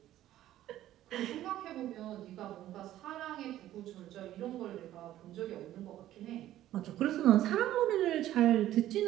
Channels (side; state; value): left; quieter; 13.4 dB